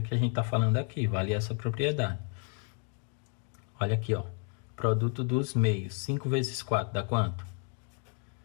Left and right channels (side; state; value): right; quieter; 37.7 dB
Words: que a gente está falando aqui, vale essa propriedade. Olha aqui, ó, produto dos meios, 5 vezes 4 dá quanto?